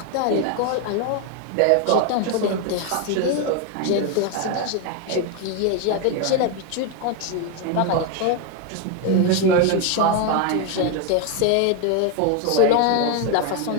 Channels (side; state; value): both; different; correlation 0.01